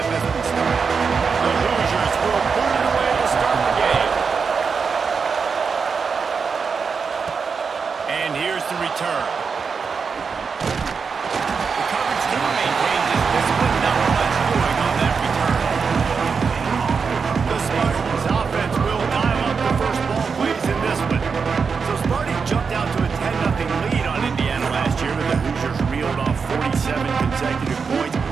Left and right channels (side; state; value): left; quieter; 5.5 dB